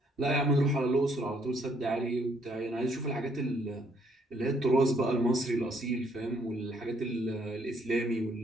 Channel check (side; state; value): both; normal; correlation 0.68